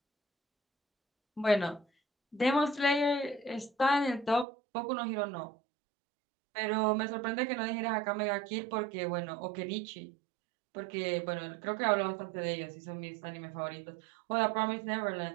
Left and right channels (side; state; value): left; drops out; at 4.5 s